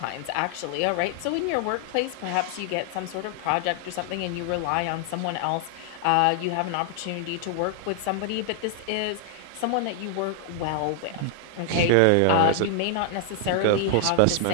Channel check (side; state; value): both; different; correlation 0.00